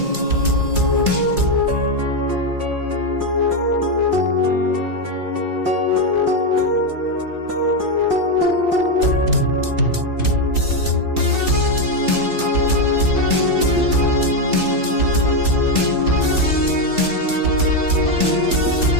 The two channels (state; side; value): late; left; 1.9 ms